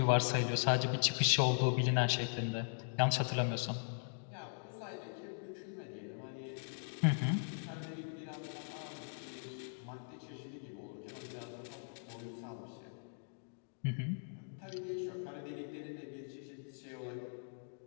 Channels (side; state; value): right; silent; digital silence